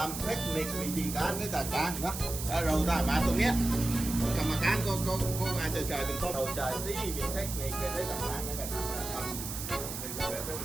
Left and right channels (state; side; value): noise; right; hiss, 7 dB below the sound